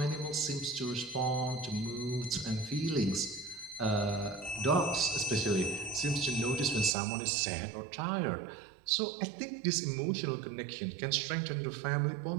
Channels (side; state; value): left; drops out; at 7.0 s